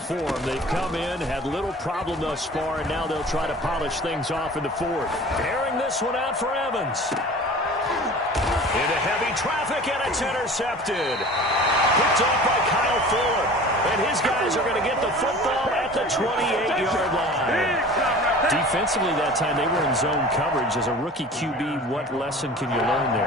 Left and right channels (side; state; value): both; normal; correlation 0.41